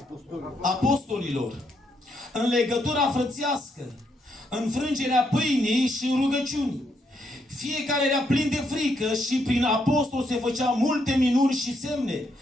apostolilor, în legătura frățească, în frângerea pâinii și în rugăciuni. Fiecare era plin de frică și prin apostol se făceau multe minuni și semne.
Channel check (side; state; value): both; normal; correlation 0.76